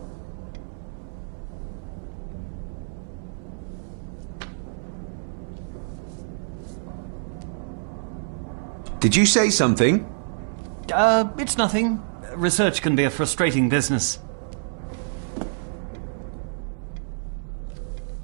Did you say something? It's nothing. Research can be a frustrating business.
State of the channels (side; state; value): left; silent; 61 dB below the other